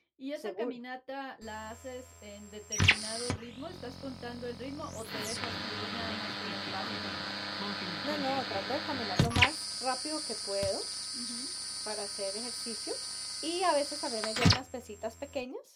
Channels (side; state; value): both; identical; correlation 1.00